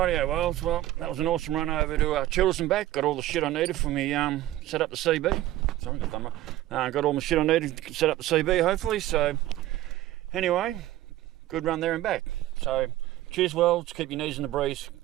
well, that was an awesome run over to Childers and back. Got all the shit I needed for me set up the CB. Sorry, got all the shit I needed to set up the CB, hopefully. So, anyway, good run there and back. So, cheers, worlds. Keep your knees in the breeze.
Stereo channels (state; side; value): quieter; left; 15.0 dB